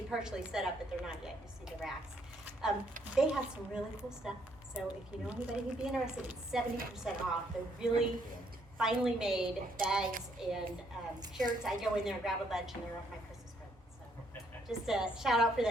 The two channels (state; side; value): normal; both; correlation 0.70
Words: partially set up, but they're not yet. You see the racks. They have some really cool stuff. So if you know anybody who'd be interested, it's 70% off. They're really finely made bags and shirts. I go in there and grab a bunch, and they're off my Christmas present. So just a shout out for